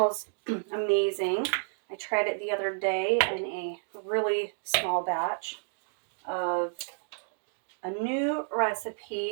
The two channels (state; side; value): silent; left; digital silence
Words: amazing. I tried it the other day in a really small batch of a new